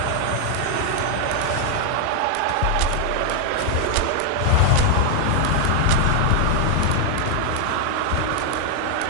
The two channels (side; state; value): both; different; correlation 0.00